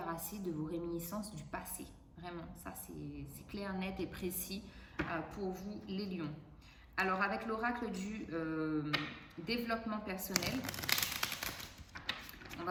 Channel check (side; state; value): both; identical; correlation 1.00